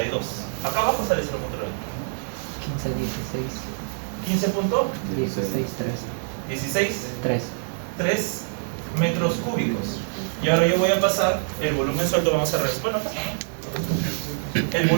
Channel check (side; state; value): left; silent; digital silence